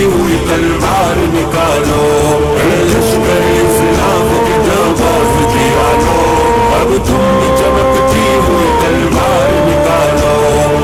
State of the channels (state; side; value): identical; both; correlation 1.00